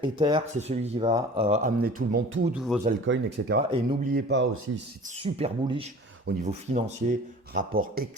Ether, c'est celui qui va amener tout le monde, tous vos altcoins, etc. Et n'oubliez pas aussi, c'est super bullish au niveau financier, rapport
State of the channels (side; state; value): both; normal; correlation 0.43